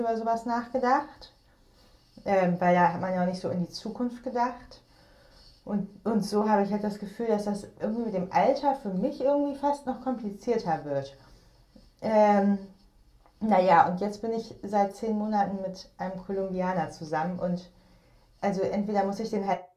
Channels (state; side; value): identical; both; correlation 1.00